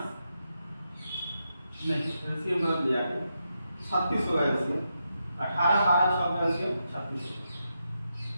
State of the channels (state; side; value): inverted; both; correlation -0.85